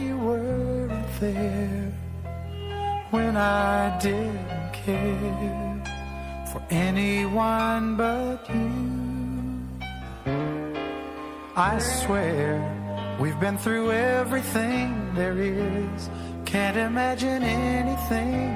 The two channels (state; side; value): identical; both; correlation 1.00